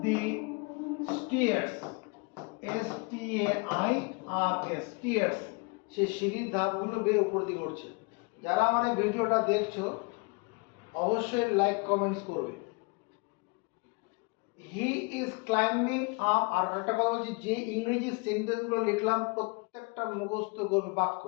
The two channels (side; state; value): right; quieter; 30.3 dB